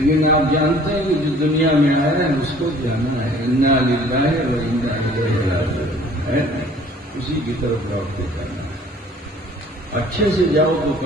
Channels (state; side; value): normal; both; correlation 0.52